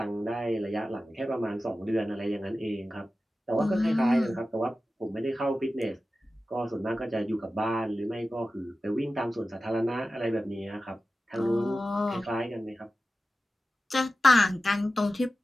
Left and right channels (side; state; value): both; normal; correlation 0.94